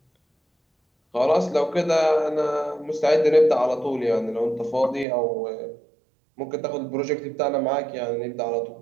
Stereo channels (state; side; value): drops out; left; at 5.1 s